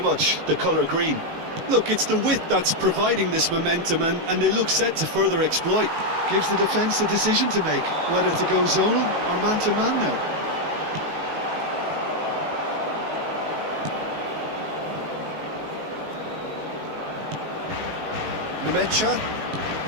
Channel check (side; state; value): left; late; 19 ms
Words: the colour green. Look, it's the width that's providing this momentum, and they look set to further exploit. Gives the defence a decision to make, whether to go zonal or man-to-man now. Nemecha.